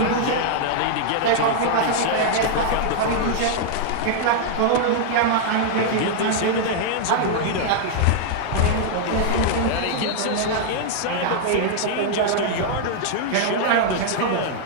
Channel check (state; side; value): different; both; correlation -0.01